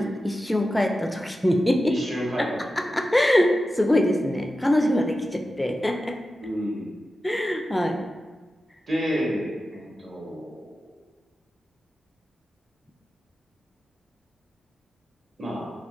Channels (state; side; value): normal; both; correlation 0.92